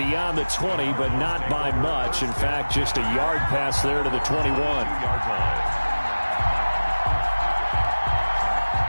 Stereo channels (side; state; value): both; inverted; correlation -1.00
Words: the 20, but not by much. In fact, just a yard pass there to the 21.